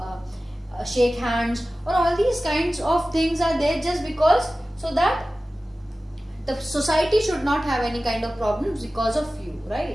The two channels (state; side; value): normal; both; correlation 0.96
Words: shake hands, or all these kinds of things are there just because, so that the society should not have any kind of problems because of you,